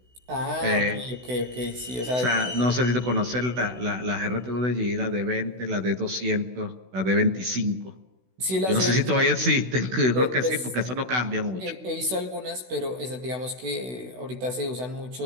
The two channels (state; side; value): late; left; 16 ms